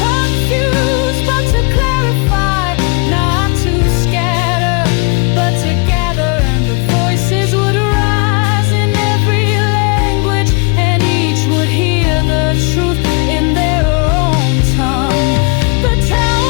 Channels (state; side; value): quieter; right; 30.7 dB